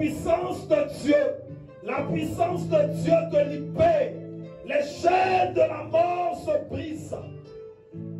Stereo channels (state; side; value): identical; both; correlation 1.00